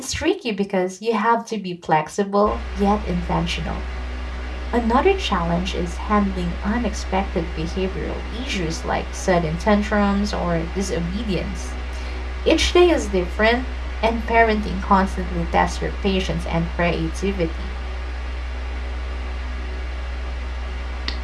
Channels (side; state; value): both; identical; correlation 1.00